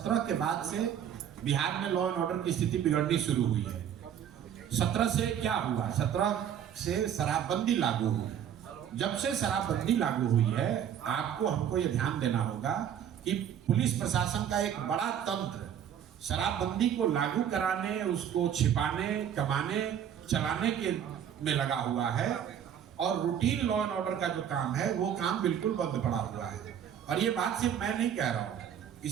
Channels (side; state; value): left; quieter; 9.2 dB